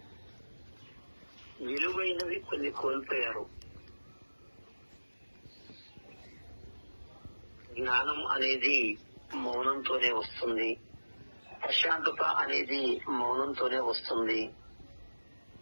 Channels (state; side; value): inverted; both; correlation -1.00